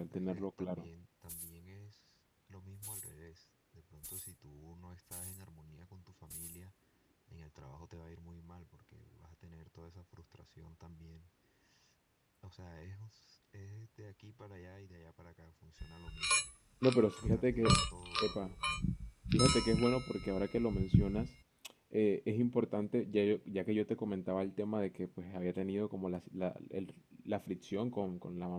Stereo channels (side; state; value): both; identical; correlation 1.00